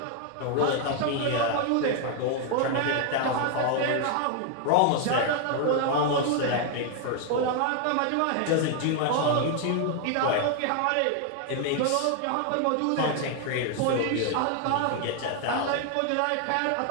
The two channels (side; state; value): both; different; correlation 0.00